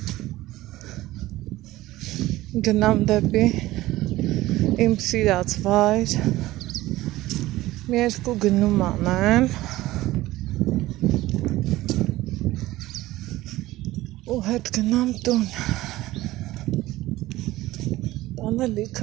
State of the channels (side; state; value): left; quieter; 17.1 dB